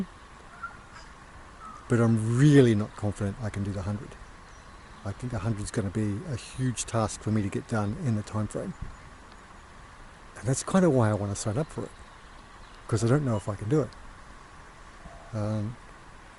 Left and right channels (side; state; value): both; identical; correlation 1.00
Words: but I'm really not confident I can do the 100. I think 100 is going to be a huge task for me to get done in the time frame, and that's kind of why I want to sign up for it, because I don't know if I can do it.